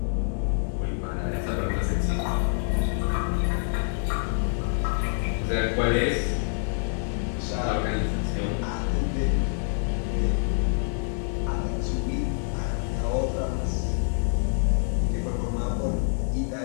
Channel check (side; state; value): right; silent; digital silence